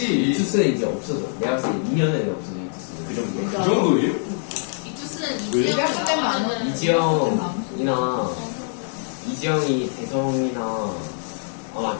이투스는 이제 없어져. 내가 봤을 때 2년 내에 없어져 이투스는. 그 정도. 그 정도예요? 이투스는 이지영이 대성이나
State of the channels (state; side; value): silent; right; digital silence